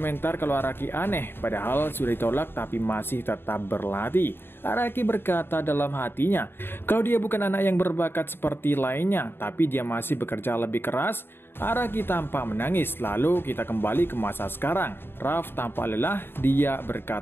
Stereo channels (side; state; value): right; late; 0.11 ms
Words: kalau Araki aneh, padahal sudah ditolak tapi masih tetap berlatih. Araki berkata dalam hatinya, kalau dia bukan anak yang berbakat seperti lainnya, tapi dia masih bekerja lebih keras. Araki tampak menangis. Lalu kita kembali ke masa sekarang. Raf tampak lelah, dia